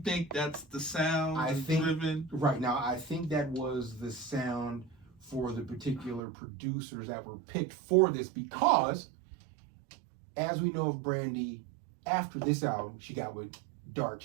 that's the sound? I think driven? Right now, I think that was the sound for the particular producers that were picked for this, because, as we know of Brandy, after this album, she got with Dark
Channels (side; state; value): left; drops out; at 6.2 s